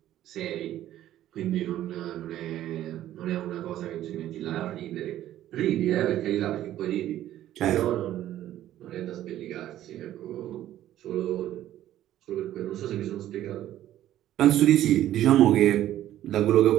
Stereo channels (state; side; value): quieter; left; 12.8 dB